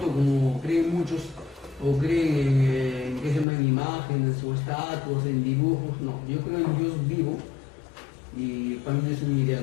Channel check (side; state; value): right; drops out; at 3.5 s